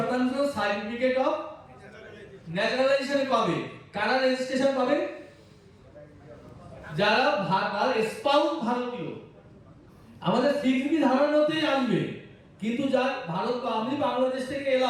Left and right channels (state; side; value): identical; both; correlation 1.00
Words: সার্টিফিকেট অফ ন্যাচারালাইজেশন পাবে। কারা রেজিস্ট্রেশন পাবে? যারা স্পাউস ভারতীয়। আমাদের 6B ধারার মধ্যেই আসবে, কিন্তু যা ভারত বা আমি বাংলাদেশ থেকে